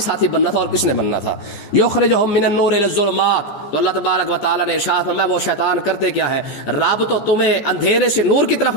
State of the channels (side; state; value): right; late; 14 ms